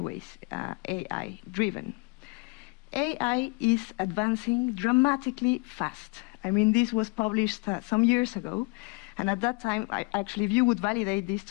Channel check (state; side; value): quieter; right; 28.4 dB